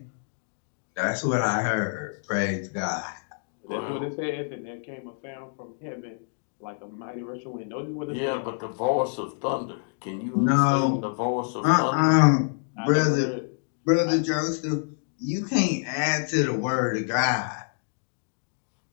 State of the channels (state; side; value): silent; right; digital silence